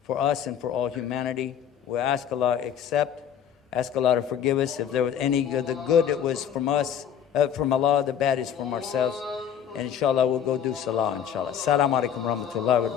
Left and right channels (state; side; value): quieter; right; 9.0 dB